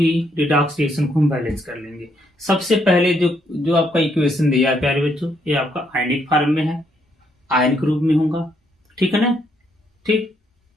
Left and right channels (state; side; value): normal; both; correlation 0.73